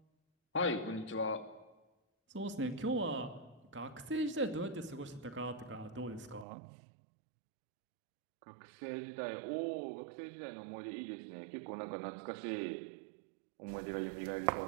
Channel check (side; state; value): left; drops out; at 6.5 s